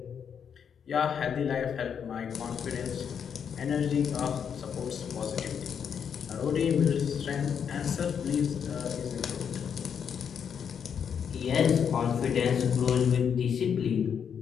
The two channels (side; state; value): right; quieter; 7.5 dB